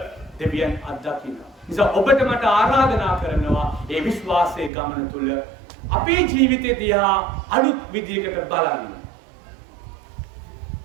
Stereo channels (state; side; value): drops out; left; at 4.7 s